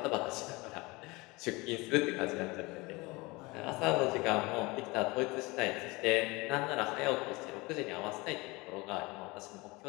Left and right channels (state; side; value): quieter; right; 24.0 dB